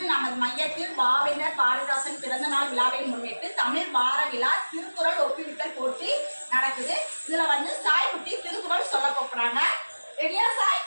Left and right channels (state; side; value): inverted; both; correlation -1.00